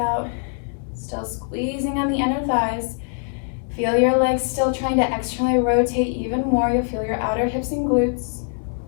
Still squeezing on the inner thighs. Feel your legs still trying to externally rotate even more. You'll feel your outer hips and glutes.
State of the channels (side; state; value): right; silent; 64 dB below the other